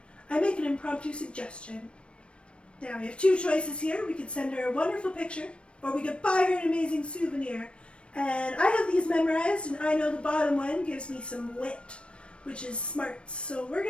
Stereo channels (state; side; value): late; right; 0.059 ms